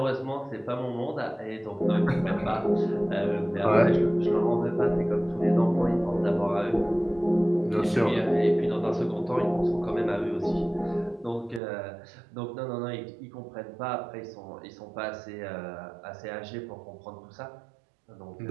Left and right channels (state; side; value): drops out; left; at 11.6 s